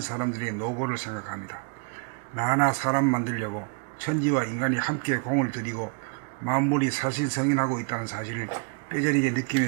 사람들의 노고를 생각합니다. 나 하나 사람 만들려고 천지와 인간이 함께 공을 들이고 만물이 사실성인하고 있다는 사실을 뼈저리게 느끼며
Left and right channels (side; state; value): left; quieter; 38.0 dB